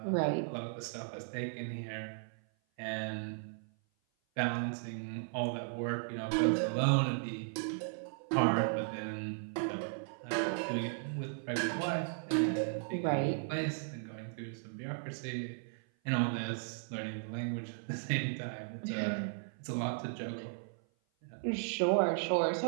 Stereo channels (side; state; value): left; silent; 54 dB below the other